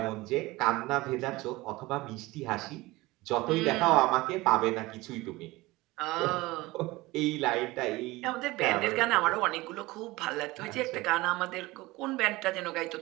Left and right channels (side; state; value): left; quieter; 20.4 dB